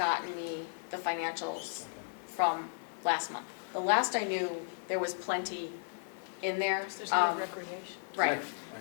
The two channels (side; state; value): right; silent; 55 dB below the other